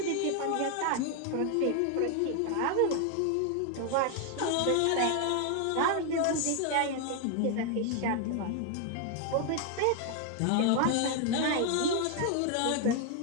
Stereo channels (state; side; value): different; both; correlation 0.00